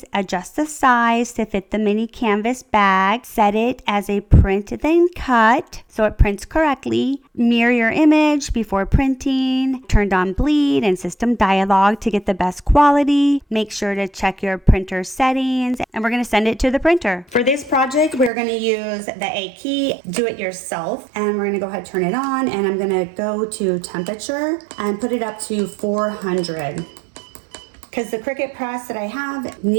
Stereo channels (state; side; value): drops out; left; at 18.3 s